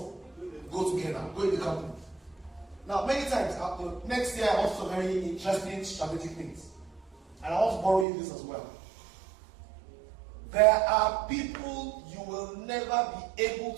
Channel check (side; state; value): left; drops out; at 8.1 s